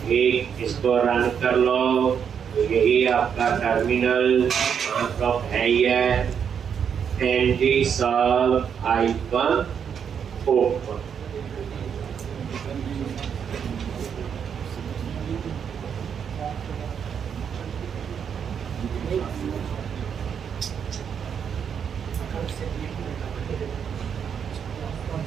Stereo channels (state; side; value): quieter; left; 7.5 dB